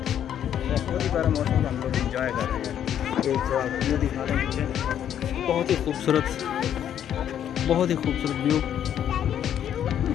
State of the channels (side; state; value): right; quieter; 10.0 dB